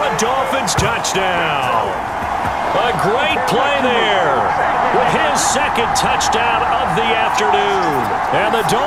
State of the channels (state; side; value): identical; both; correlation 1.00